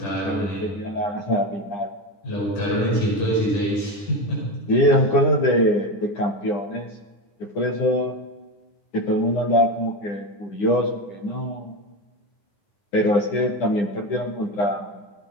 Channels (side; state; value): right; late; 9.9 ms